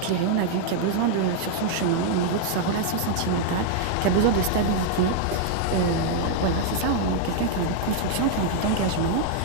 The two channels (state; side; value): different; both; correlation -0.01